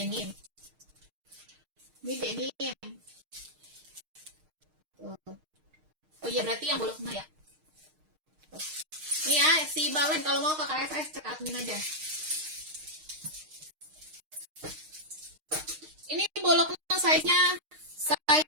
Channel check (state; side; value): late; left; 6.5 ms